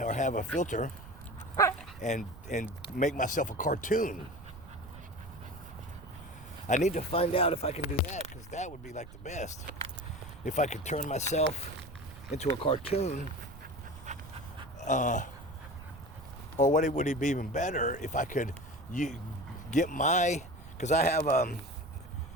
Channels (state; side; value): noise; right; rumble, 16 dB below the sound